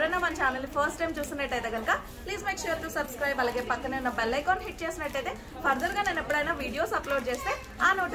మన ఛానల్ ఫస్ట్ టైం చూసినట్టయితే కనుక please make sure to subscribe. అలాగే పక్కనే ఉన్న బెల్ ఐకాన్ హిట్ చేసినట్టయితే ఫర్దర్ గా నేను ఎప్పుడైనా వీడియోస్ అప్లోడ్ చేస్తే ఆ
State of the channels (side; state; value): both; identical; correlation 1.00